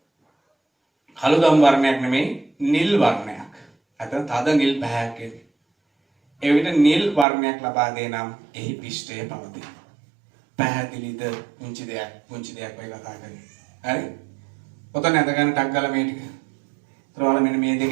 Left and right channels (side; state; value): left; drops out; at 7.2 s